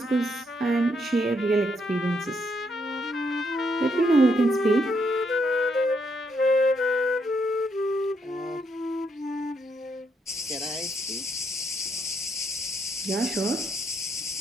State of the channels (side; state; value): both; normal; correlation 0.76